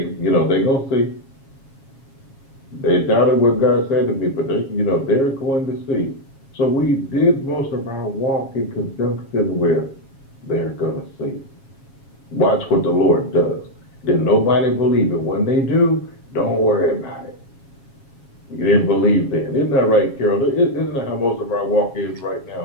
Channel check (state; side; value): late; right; 7.3 ms